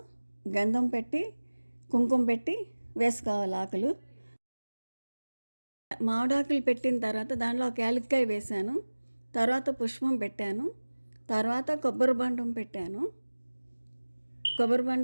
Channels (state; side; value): inverted; both; correlation -1.00